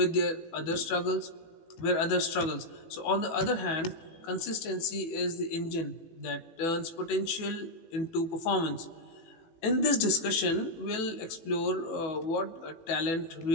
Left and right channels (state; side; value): late; right; 18 ms